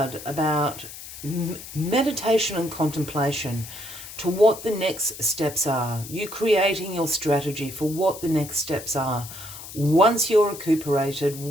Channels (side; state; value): left; noise; hiss, 13 dB below the sound